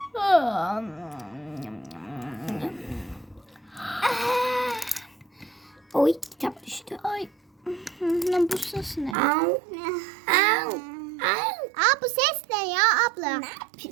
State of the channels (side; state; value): left; drops out; at 9.2 s